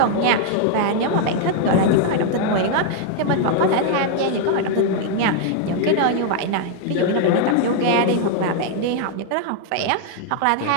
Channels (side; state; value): both; different; correlation 0.00